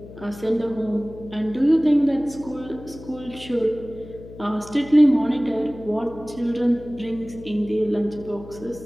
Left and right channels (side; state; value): left; noise; hum, 16 dB below the sound